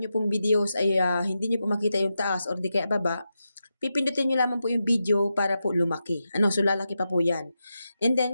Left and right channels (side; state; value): both; inverted; correlation -0.88